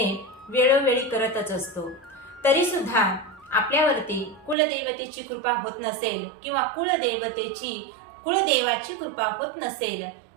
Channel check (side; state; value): left; drops out; at 4.5 s